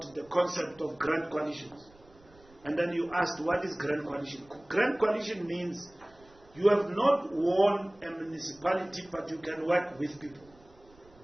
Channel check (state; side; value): noise; right; rumble, 27 dB below the sound